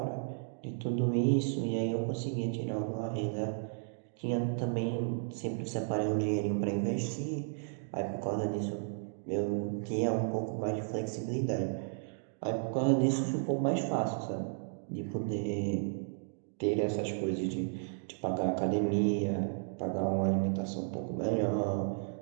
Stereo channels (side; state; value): left; silent; digital silence